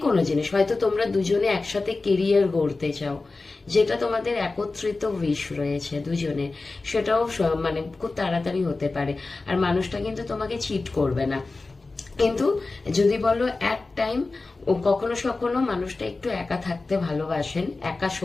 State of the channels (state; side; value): quieter; right; 3.6 dB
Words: কোনো জিনিস, হয়তো তোমরা দুজনে একসাথে কেরিয়ার গড়তে চাও, যেটা তোমাদের একত্রিত উইশ রয়েছে দুজনের, সেটাও মানে খুব তাড়াতাড়ি হতে পারে। আর মানুষটা কিন্তু তোমাকে চিট করবে না। কিন্তু যদি বলো এক টাইম, ও কখনো কখনো মানুষটা একটু একা থাকতে ভালোবাসেন, একা